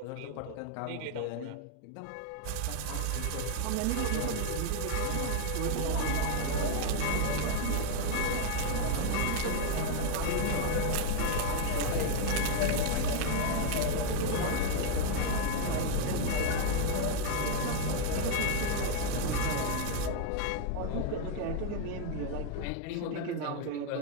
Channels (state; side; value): different; both; correlation 0.01